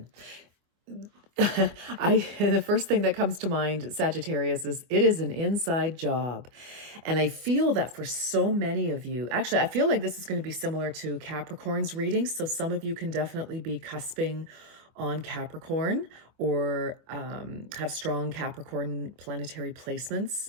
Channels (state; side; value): late; left; 25 ms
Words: The first thing that comes to mind, Sagittarius, is it is an inside job. And I feel that for so many of you, actually, I feel like this is going to be similar to Capricorn's reading. So some of you can definitely be cusping on Capricorn or have strong Capricorn planetary